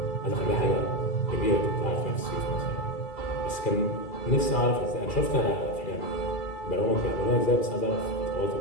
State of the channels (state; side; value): late; right; 2.3 ms